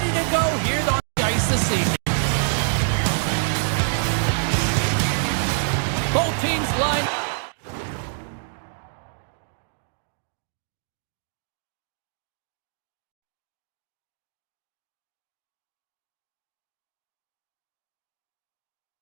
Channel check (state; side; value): silent; left; digital silence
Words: to go here on the ice this evening. Both teams line.